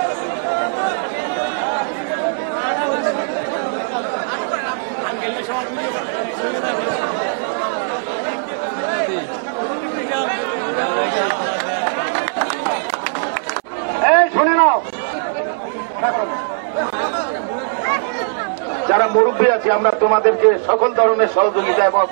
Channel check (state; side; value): silent; left; 67 dB below the other